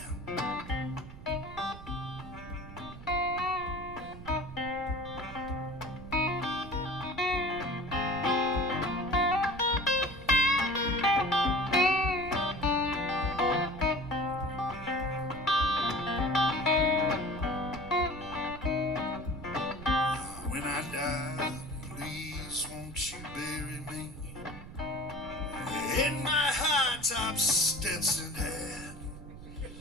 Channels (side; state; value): right; noise; rumble, 14 dB below the sound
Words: When I die, please won't you bury me in my high-top Stetson hat?